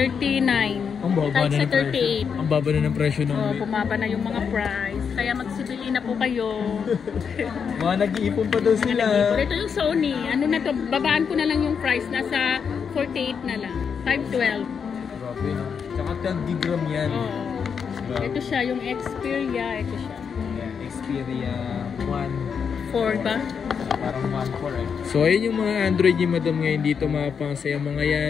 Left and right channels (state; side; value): quieter; right; 6.6 dB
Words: Ang baba Kahit na sa ng presyo. 38. Ang baba na ng presyo ng Oh, bumaba na yung mga price. Kaya magsibili na po kayo. mga nag-iipon pa daw sila. Pero ito yung Sony. Ano na to? Babaan ko na lang yung price. Nasa 48 na lang. 512. Grabe, no? Tsaka 10 gig RAM yan. Oo. Ito siya, yung Xperia. Ito siya. Yeah, Xperia 1. 4 ba? Parang 1.4 eh. So ayun yung mga Android ni Madam ngayon dito mga pangs. Yung mga